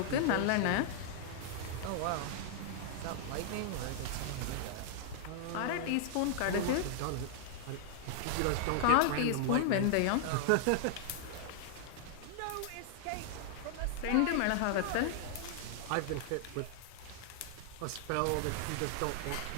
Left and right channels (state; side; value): different; both; correlation -0.01